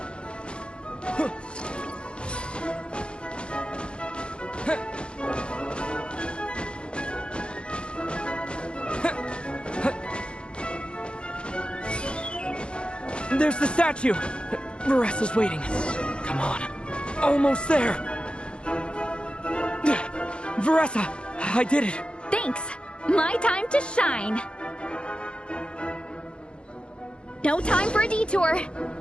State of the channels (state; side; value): late; right; 0.056 ms